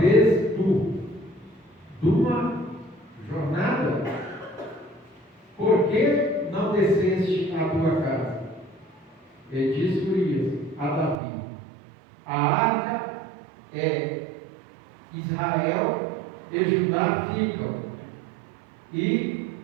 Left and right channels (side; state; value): left; drops out; at 11.2 s